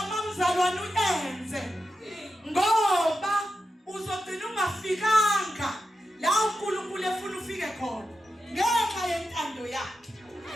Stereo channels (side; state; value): both; normal; correlation 0.90